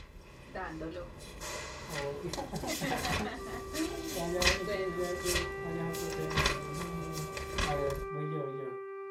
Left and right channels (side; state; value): both; identical; correlation 1.00